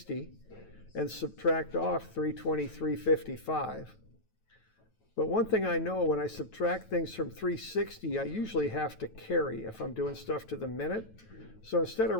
and subtract off 323.55. But one thing I know, when I subtract things from 360, I usually have to carry if I'm doing stuff to the minute. So instead of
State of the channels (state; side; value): late; right; 9.1 ms